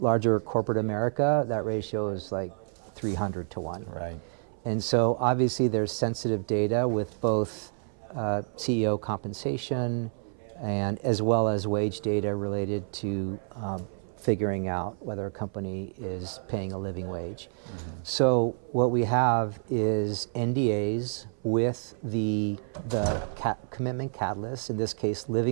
corporate America, that ratio is like 300 to 1. Right. And so obviously there's sensitive data with both CEO compensation and as well as wage data related to figuring out whether a company is paying a living wage. So what we have is NDAs with the commitment catalyst, in this case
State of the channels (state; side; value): silent; left; 59 dB below the other